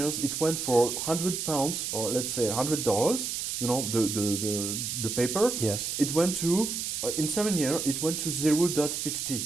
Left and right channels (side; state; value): right; noise; hiss, 3 dB below the sound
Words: it went for £100, or let's say $100. The paper. Yes. It went to in 7 years. It went to